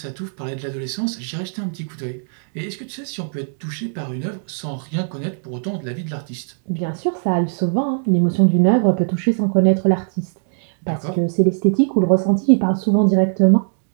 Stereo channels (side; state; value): left; silent; digital silence